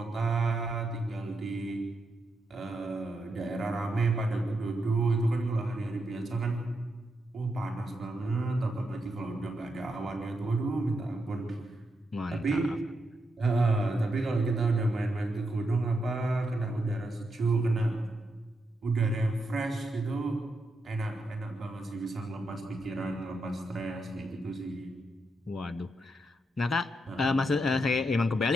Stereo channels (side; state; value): both; normal; correlation 0.82